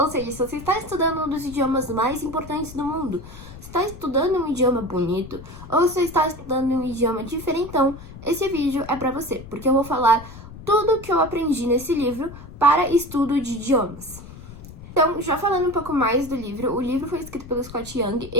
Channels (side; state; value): left; noise; rumble, 15 dB below the sound